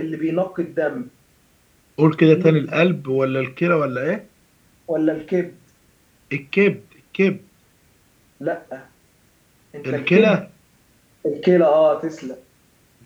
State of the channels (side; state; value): both; identical; correlation 1.00